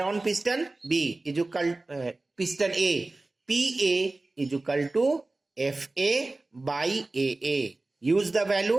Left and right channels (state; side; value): quieter; left; 3.1 dB